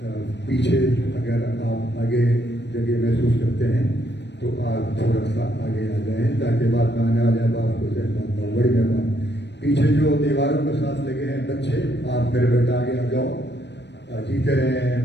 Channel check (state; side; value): late; right; 0.51 ms